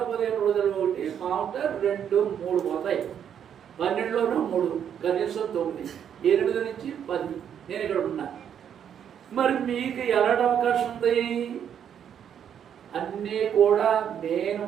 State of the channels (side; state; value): left; quieter; 8.8 dB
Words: రోజులు ఒకటి, మామూలుగా 2, 3 పోతాయి. 12లోనూ 3, కనీసం 9, 8 నుంచి 10 నేను ఇక్కడ ఉన్నా. మరి మీకు ఎలాంటి అవకాశం ఉంది? అన్నీ కూడా నేను